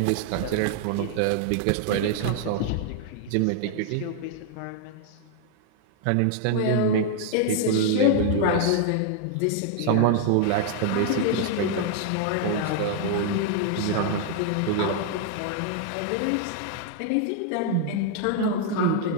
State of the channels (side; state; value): both; different; correlation 0.00